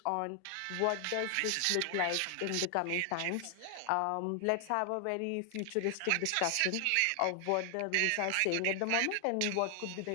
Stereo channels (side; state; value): both; different; correlation 0.00